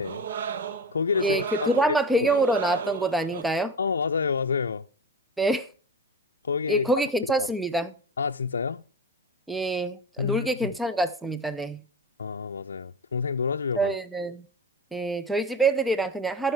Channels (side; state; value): both; normal; correlation 0.28